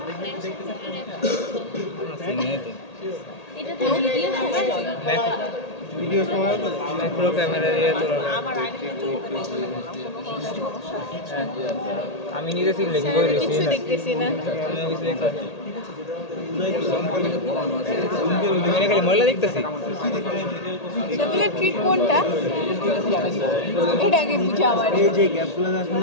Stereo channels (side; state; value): right; late; 1.8 ms